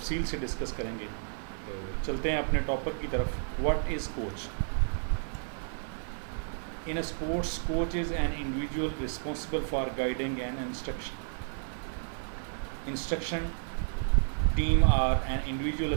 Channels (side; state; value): left; silent; digital silence